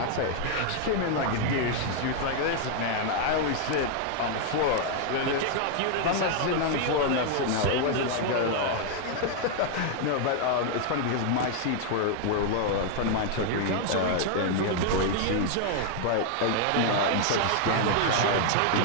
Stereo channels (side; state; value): both; different; correlation 0.00